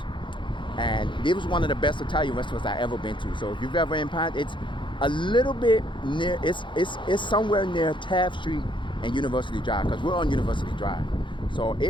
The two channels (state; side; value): late; right; 0.23 ms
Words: And it was one of the best Italian restaurants I ever been to. So if you've ever in Pine, it's a little bit near, it's somewhere near Taft Street and University Drive, because we're on University Drive. So